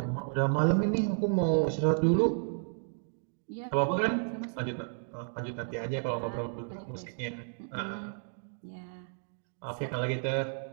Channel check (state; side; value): silent; left; 56 dB below the other